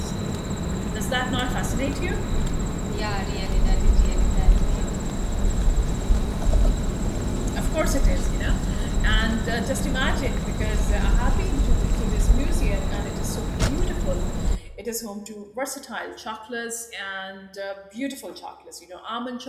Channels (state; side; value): identical; both; correlation 1.00